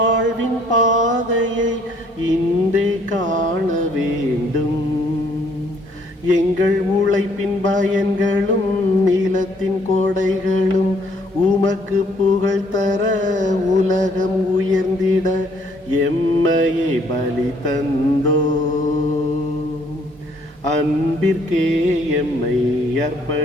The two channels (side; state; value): both; normal; correlation 0.64